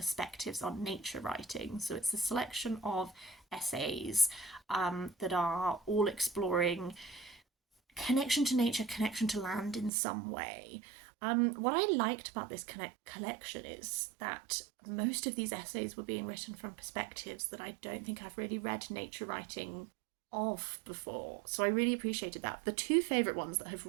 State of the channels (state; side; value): drops out; left; at 9.9 s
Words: on nature writing. So it's a selection of essays that are all exploring connection to nature, connection to land in some way. What I liked about this collection is that most of these essays were being written from perspectives that I don't think I've really read nature writing of before. So I really appreciated that. The two favourite ones that have